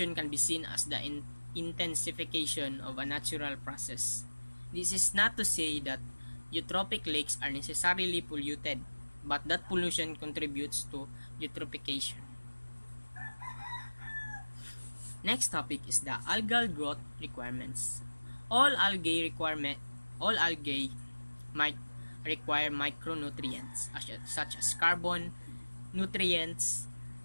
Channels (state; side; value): inverted; both; correlation -1.00